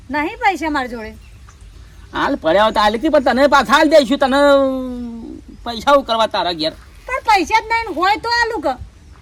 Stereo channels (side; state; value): both; identical; correlation 1.00